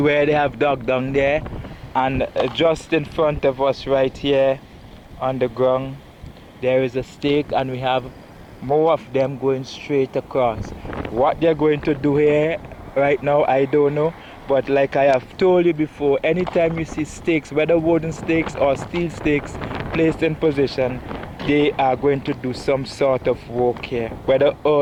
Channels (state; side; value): identical; both; correlation 1.00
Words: they have dug down there, and just in front of us right here on the ground there is a stake, and we have more of them going straight across. What they're going to do here right now, I don't know, but like I have told you before, anytime you see stakes, whether wooden stakes or steel stakes placed in position, they are going to do some sort of work here, whether